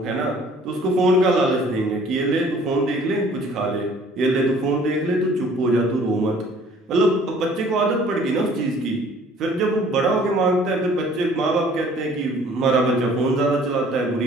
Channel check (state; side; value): normal; both; correlation 0.54